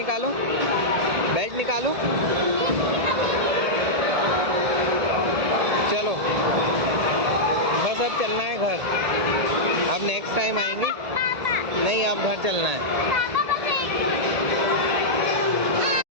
चलो बस, अब चलना है घर। अब नेक्स्ट टाइम आएंगे। नहीं, अब घर चलना है।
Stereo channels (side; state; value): left; late; 1.7 ms